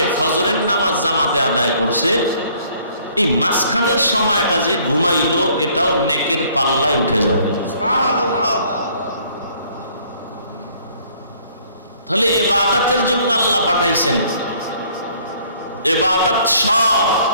ফজরের নামাজ জামাতে আদায় করছে, এই মাঝখানের সময়টা যে ঘুমাইলো এটাও নেকের পাল্লায় উঠে যাবে। তাহলে ইবাদতের জন্য আল্লাহ পাঠাইছেন। ইবাদত সব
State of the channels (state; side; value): inverted; both; correlation -0.60